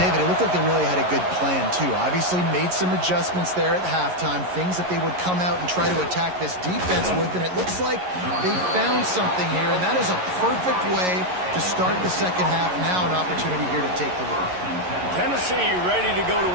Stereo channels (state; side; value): late; left; 11 ms